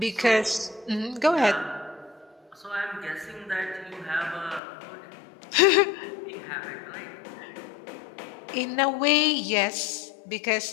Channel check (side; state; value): right; drops out; at 4.6 s